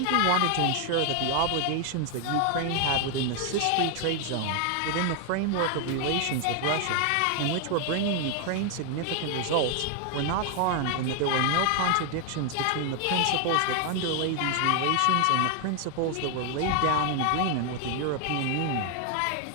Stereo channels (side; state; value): both; different; correlation 0.00